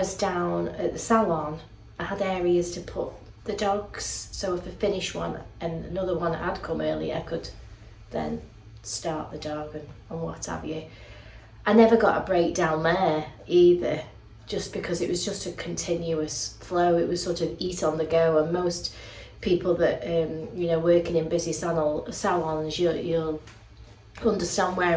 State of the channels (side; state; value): both; identical; correlation 1.00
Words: down at the salon, I had areas to put the dogs, so if I finished one and another one had come early, I could then start the dog and what have you. I never got a break down there either, just because it was just a continuous flow. It was sort of eat on the go, and most people that you know, working in busy salons, you'll understand where